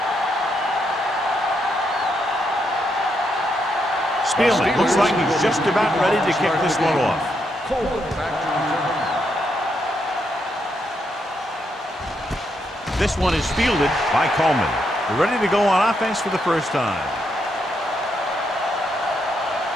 Spielman looks like he's just about ready to kick this one off. This one is fielded by Coleman. They're ready to go on offense for the first time.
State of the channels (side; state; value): both; normal; correlation 0.79